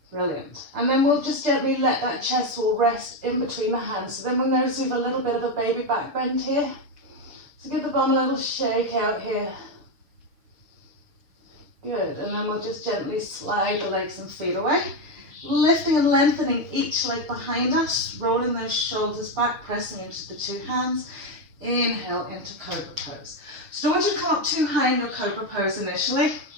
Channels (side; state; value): left; late; 6.6 ms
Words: brilliant. And then we'll just gently let that chest wall rest in between the hands. So then we'll notice we have a little bit of a baby back bend here. So give the bum a little shake out here. Good. And then we'll just gently slide the legs and feet away. Lifting and lengthening each leg behind us, rolling those shoulders back, pressing into the two hands. Inhale into Cobra Pose. So don't want you to come up too high in your Cobra Pose initially.